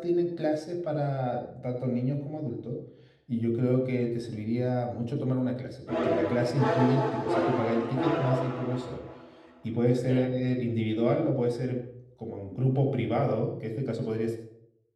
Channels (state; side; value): identical; both; correlation 1.00